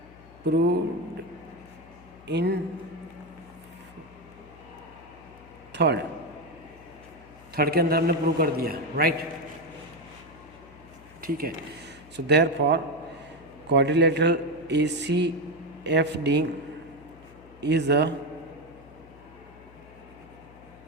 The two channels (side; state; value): left; noise; hum, 22 dB below the sound